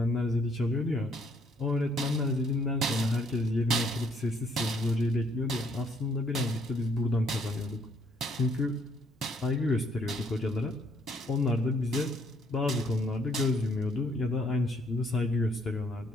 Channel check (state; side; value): normal; both; correlation 0.66